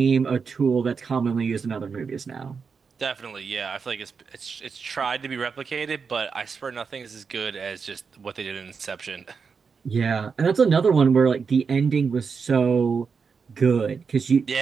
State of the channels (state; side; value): quieter; left; 5.6 dB